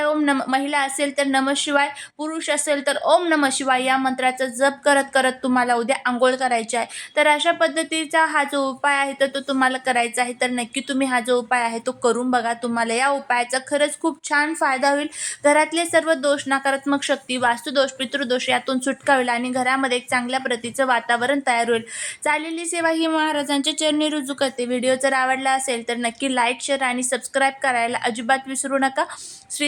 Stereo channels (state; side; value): identical; both; correlation 1.00